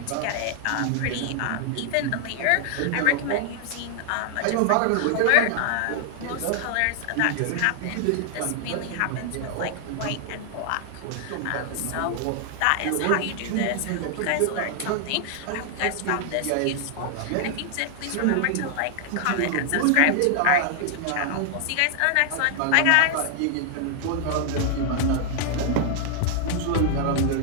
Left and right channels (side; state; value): both; different; correlation 0.00